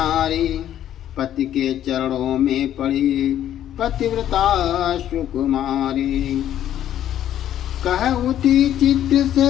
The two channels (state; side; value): quieter; right; 11.3 dB